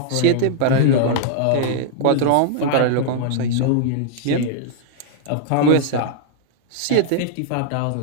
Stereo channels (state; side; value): different; both; correlation -0.01